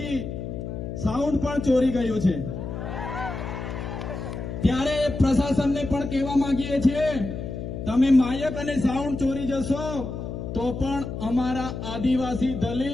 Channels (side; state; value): left; noise; hum, 6 dB below the sound